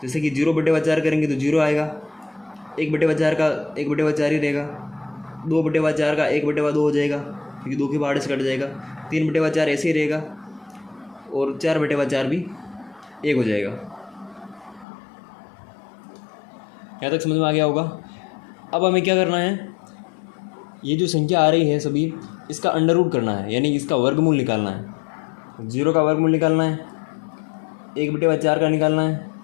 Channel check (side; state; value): right; drops out; at 14.9 s